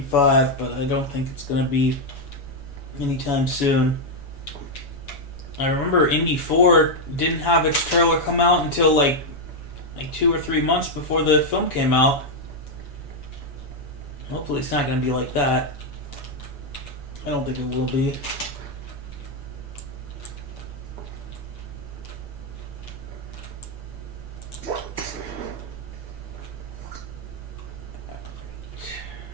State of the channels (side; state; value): right; late; 7.1 ms